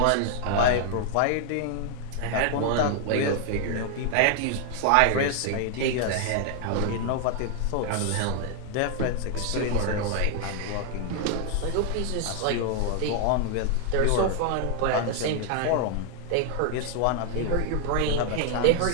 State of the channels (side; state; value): both; different; correlation 0.00